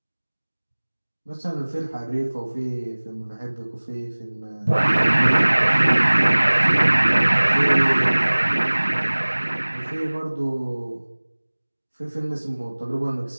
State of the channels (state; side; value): inverted; both; correlation -1.00